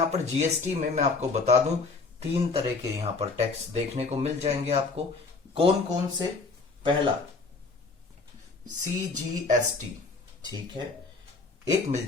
पर जीएसटी में मैं आपको बता दूं 3 तरह के यहाँ पर टैक्स देखने को मिल जाएंगे आपको। कौन कौन से? पहला सीजीएसटी, ठीक है, एक मिल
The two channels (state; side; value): quieter; right; 4.0 dB